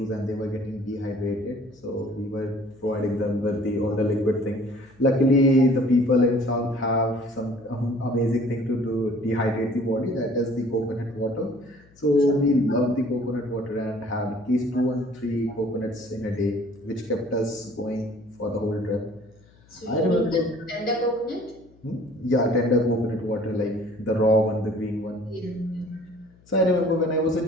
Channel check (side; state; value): left; noise; hum, 28 dB below the sound